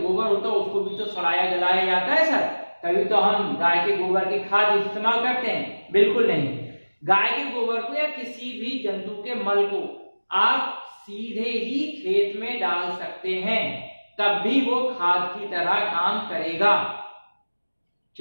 होता है उसको भी तो सड़ाया गलाया जाता है सर, तभी तो हम गाय के गोबर की खाद इस्तेमाल करते हैं। बिल्कुल नहीं, गाय के गोबर को या किसी भी जंतु के मल को आप सीधे ही खेत में डाल सकते हैं, तब भी वो खाद की तरह काम करेगा,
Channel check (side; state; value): both; inverted; correlation -1.00